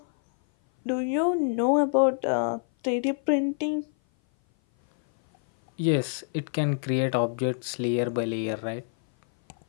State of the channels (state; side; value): silent; right; 57 dB below the other